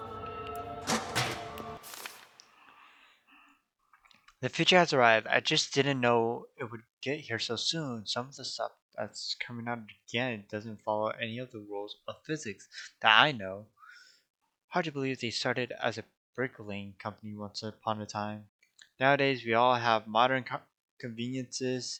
The future has arrived. I just didn't know it would get here so soon. Some of the stuff that's coming out again doesn't follow any of the rules of physics that I know. Hard to believe they started as a bricklaying company once upon a time. Nowadays, we all have modern conveniences,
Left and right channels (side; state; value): both; identical; correlation 1.00